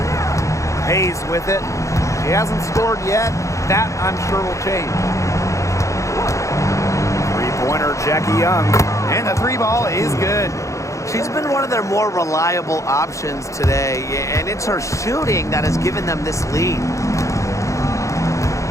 Hayes with it. She hasn't scored yet. That, I'm sure, will change. Three-pointer, Jackie Young. And the 3-ball is good. She's been one of their more reliable options today, and it's her shooting that has given them this lead.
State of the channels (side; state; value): right; late; 0.15 ms